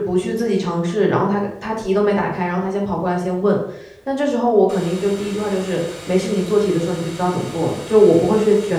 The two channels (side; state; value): both; identical; correlation 1.00